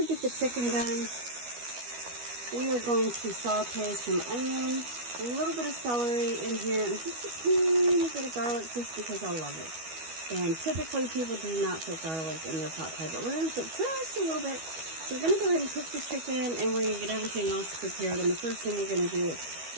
get the chicken done, we are going to saute some onion, a little bit of celery in here, and just a teeny bit of garlic just because I love it. And typically people do not put garlic in their pot pie, but we're going to put just a little bit. So we're going to go ahead and cook the chicken, and we're going to get everything else prepared. And the first thing we're going to do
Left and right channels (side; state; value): left; late; 12 ms